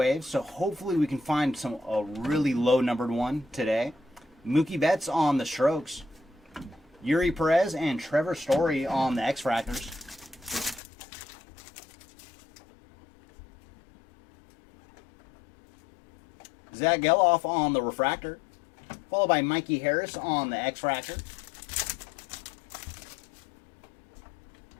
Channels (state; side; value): drops out; right; at 10.8 s